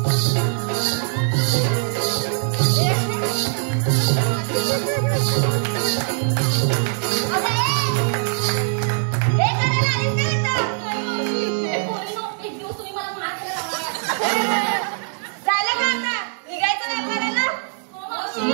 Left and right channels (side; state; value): left; silent; 64 dB below the other